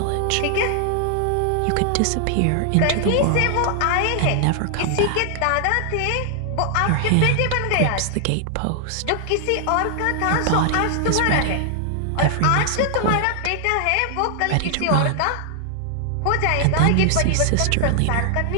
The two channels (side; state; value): both; different; correlation 0.00